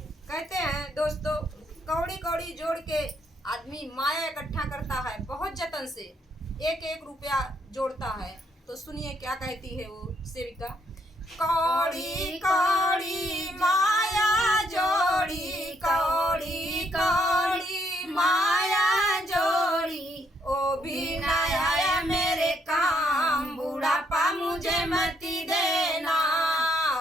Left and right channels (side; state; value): both; normal; correlation 0.72